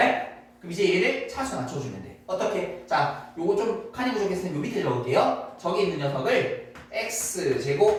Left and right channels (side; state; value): both; identical; correlation 1.00